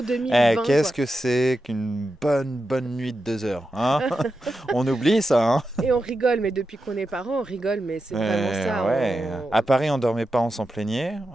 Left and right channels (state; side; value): normal; both; correlation 0.89